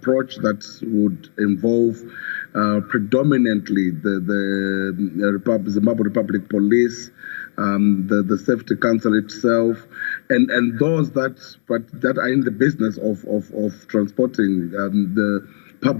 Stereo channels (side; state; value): right; silent; digital silence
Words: that would involve predominantly the Zimbabwe Republic Police, the Safety Council itself, and those that are in the business of transporting the